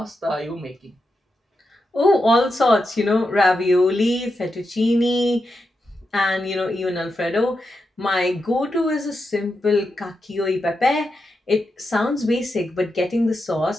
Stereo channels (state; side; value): normal; both; correlation 0.87